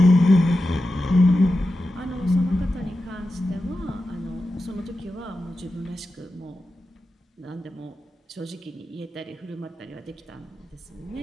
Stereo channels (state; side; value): normal; both; correlation 0.91